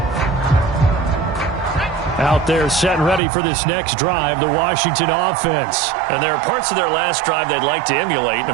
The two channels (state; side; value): drops out; left; at 3.2 s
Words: Out there set and ready for this next drive, the Washington offense. And there are parts of their last drive they'd like to emulate. And,